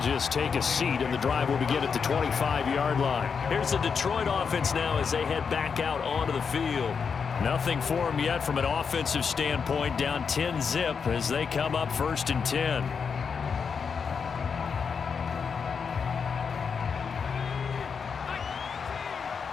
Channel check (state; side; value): quieter; right; 6.0 dB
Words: take a seat, and the drive will begin at the 25-yard line. Here's the Detroit offense now as they head back out onto the field. Nothing for them yet from an offensive standpoint, down 10-zip as they come up 1st and 10.